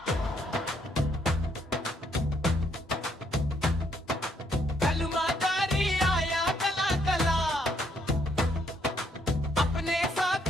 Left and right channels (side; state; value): both; normal; correlation 0.71